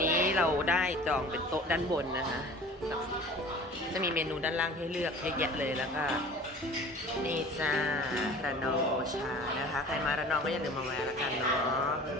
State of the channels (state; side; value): normal; both; correlation 0.43